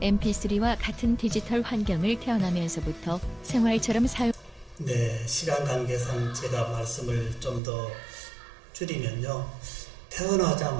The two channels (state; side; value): drops out; left; at 7.6 s